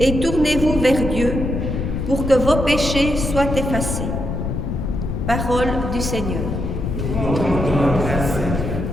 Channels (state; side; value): noise; left; rumble, 3 dB below the sound